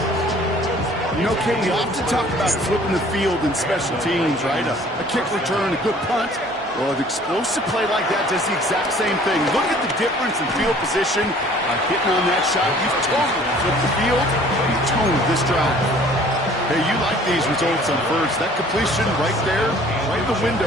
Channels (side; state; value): both; normal; correlation 0.53